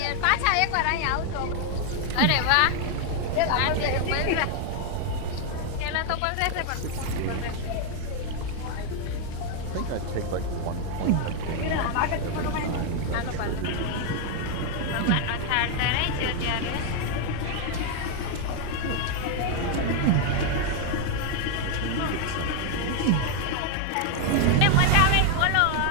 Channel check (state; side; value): different; both; correlation 0.00